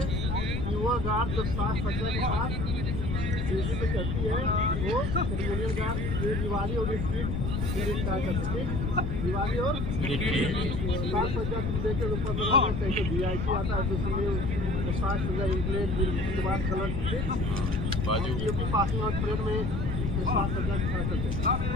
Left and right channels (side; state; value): left; noise; rumble, 1 dB below the sound